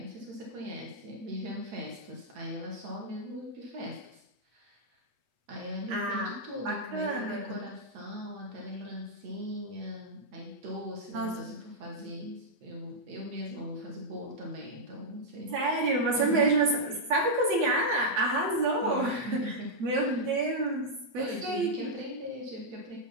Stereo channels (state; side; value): late; left; 8.2 ms